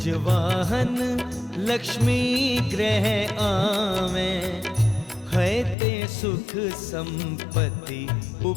लक्ष्मी ग्रह आवे, है ते सुख संपत्ति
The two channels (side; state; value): right; drops out; at 5.8 s